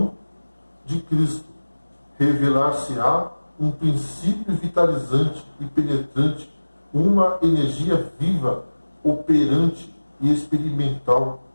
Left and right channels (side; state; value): both; inverted; correlation -1.00